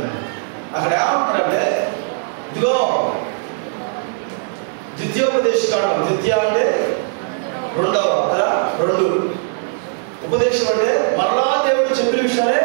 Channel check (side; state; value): left; silent; 67 dB below the other